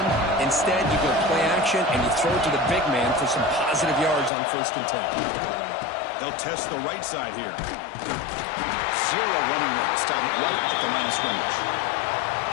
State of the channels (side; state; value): right; drops out; at 4.3 s